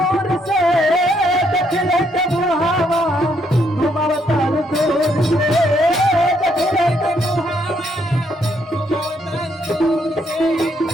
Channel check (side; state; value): both; normal; correlation 0.72